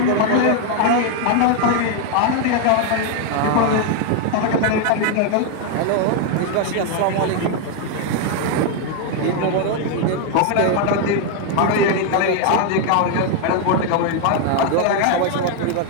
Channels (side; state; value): both; different; correlation 0.01